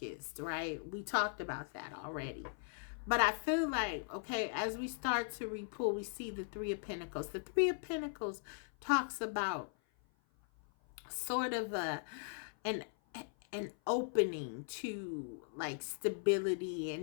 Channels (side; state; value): right; silent; 52 dB below the other